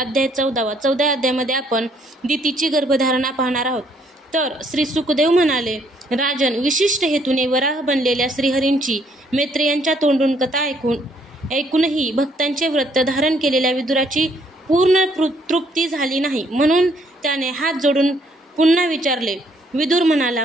14. 14 अध्यायामध्ये आपण दितीची गर्भधारणा पाहणार आहोत. तर श्री सुखदेव म्हणाले, राजन, विशिष्ट हेतूने वराह बनलेल्या श्रीहरींची मैत्रेयांच्या तोंडून कथा ऐकूनही भक्तांचे व्रत धारण केलेल्या विदुराची पूर्ण तृप्ती झाली नाही. म्हणून त्याने हात जोडून पुन्हा विचारले. विदुर म्हणाला,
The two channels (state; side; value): normal; both; correlation 0.67